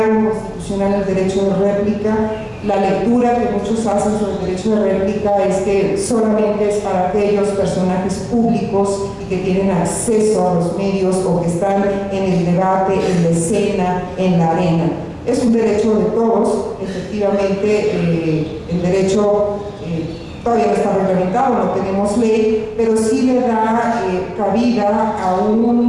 constitucional el derecho de réplica. La lectura que muchos hacen sobre el derecho de réplica es que solamente es para aquellos personajes públicos y que tienen acceso a los medios o que están en el debate, en la escena, en la arena. Es un derecho de todos, efectivamente. El derecho todavía no está reglamentado, no tenemos ley, pero sí le da cabida a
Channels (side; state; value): both; identical; correlation 1.00